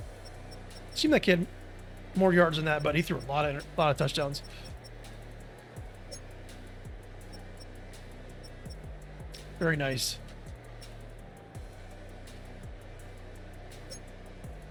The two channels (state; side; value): identical; both; correlation 1.00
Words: seemed like he had more yards than that, but he threw a lot of touchdowns. Very nice.